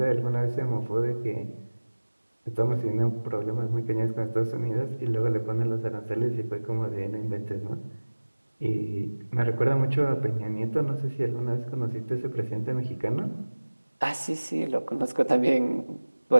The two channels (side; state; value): both; inverted; correlation -1.00